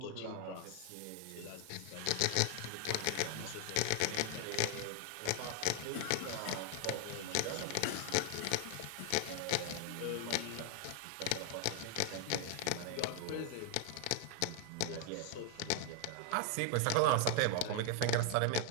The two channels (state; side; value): different; both; correlation 0.00